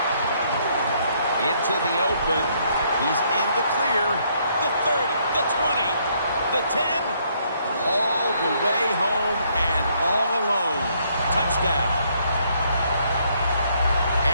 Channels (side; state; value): both; inverted; correlation -0.69